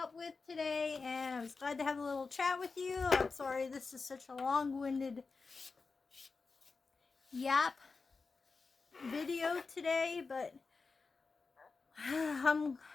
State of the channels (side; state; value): right; quieter; 4.4 dB